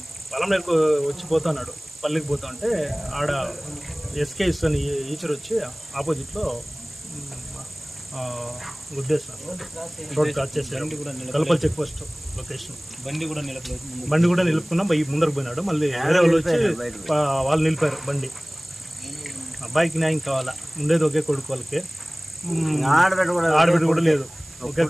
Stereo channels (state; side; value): noise; right; hiss, 21 dB below the sound